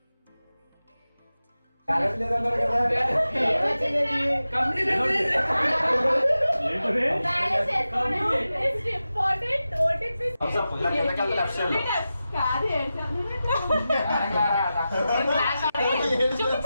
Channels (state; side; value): inverted; both; correlation -0.93